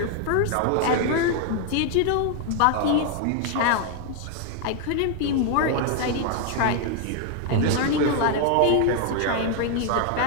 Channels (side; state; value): both; different; correlation 0.00